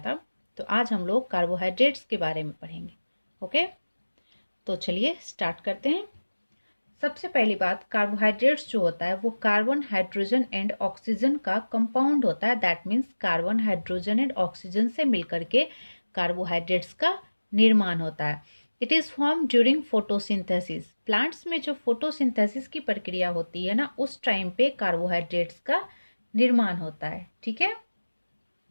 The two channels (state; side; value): inverted; both; correlation -1.00